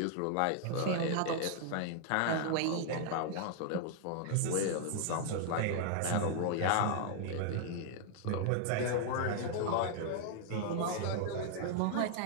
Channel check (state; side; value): different; both; correlation 0.00